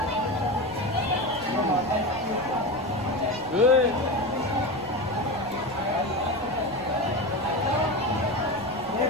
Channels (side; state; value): right; noise; rumble, 18 dB below the sound